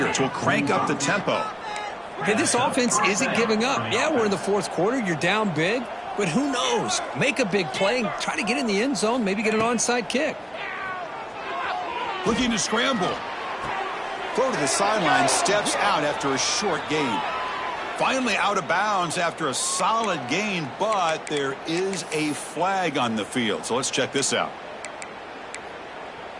will crank up the tempo. Hey, this offense isn't giving up. Yeah, we're in the 4th quarter. You're down big, but who knows? Make a big play and try to get in the end zone, maybe get an onside kick. Looking to scramble. Throw to the sideline, steps out after a short gain. Finally out of bounds after a solid gain, but there is a flag on the field. So let's check this out.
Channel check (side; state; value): both; identical; correlation 1.00